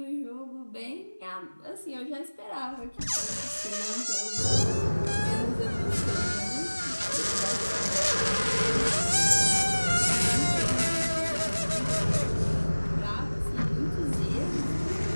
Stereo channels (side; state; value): both; inverted; correlation -1.00